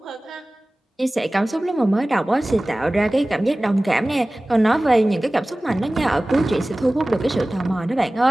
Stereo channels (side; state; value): both; normal; correlation 0.98